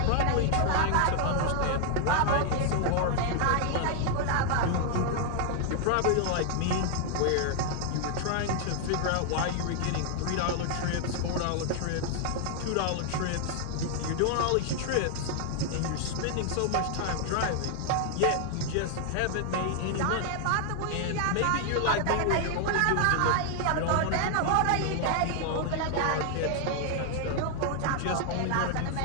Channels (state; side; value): different; both; correlation 0.00